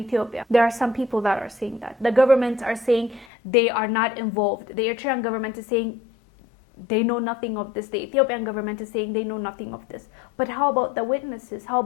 There are some people that are saying that. The governments are saying they are not involved. The Eritrean government is saying they know nothing of this. The Ethiopian government is saying they know nothing of this. But how about the witnesses? How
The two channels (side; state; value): right; drops out; at 3.2 s